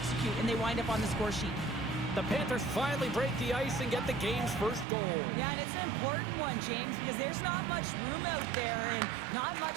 and they wind up on the score sheet. The Panthers finally break the ice and get the game's first goal. Yeah, and it's an important one, James, because there's not much room out there and not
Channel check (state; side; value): drops out; left; at 4.9 s